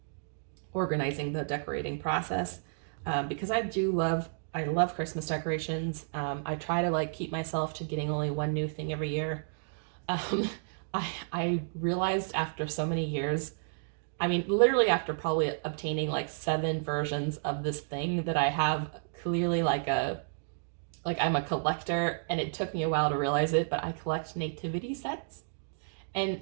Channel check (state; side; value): silent; left; digital silence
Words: organizing the decorating process. Because I love Christmas decorations. I try to like keep myself to getting only one new thing every year. I realized after so many years, I mean, literally after probably obtaining like 7 versions of this thing, that I have clearly like I'm a collector, and it took me a while to realize it, but I collect nativity sets. And